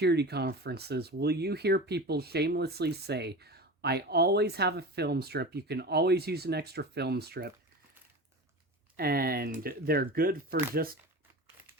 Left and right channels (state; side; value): normal; both; correlation 0.30